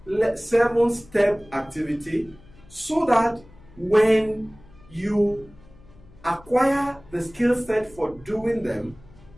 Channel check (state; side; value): noise; left; hum, 24 dB below the sound